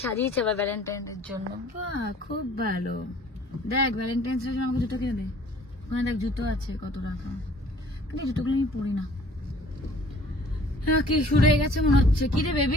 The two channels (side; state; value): both; normal; correlation 0.54